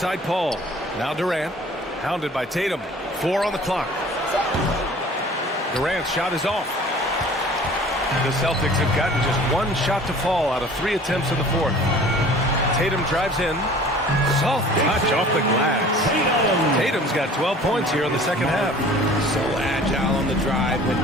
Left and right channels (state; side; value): normal; both; correlation 0.47